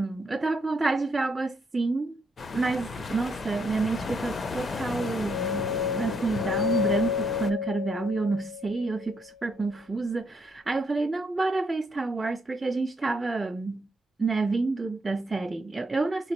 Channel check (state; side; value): normal; both; correlation 0.75